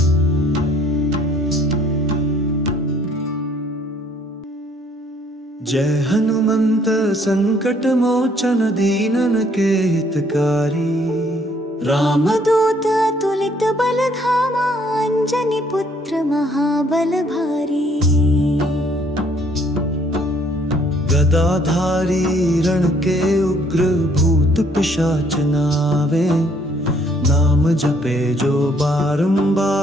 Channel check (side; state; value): both; normal; correlation 0.64